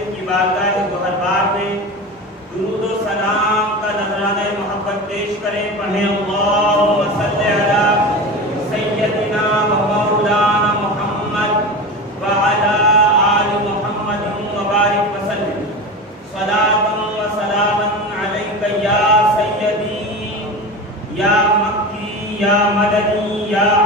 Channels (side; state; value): both; normal; correlation 0.27